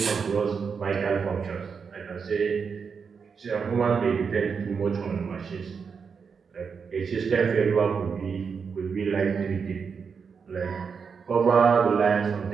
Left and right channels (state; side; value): quieter; left; 5.9 dB